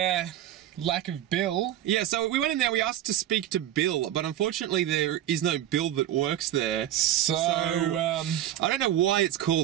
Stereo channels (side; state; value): left; quieter; 12.0 dB